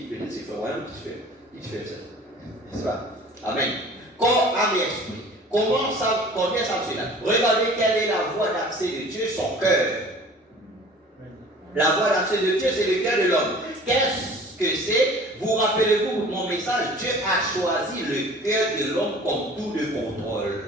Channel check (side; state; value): both; normal; correlation 0.46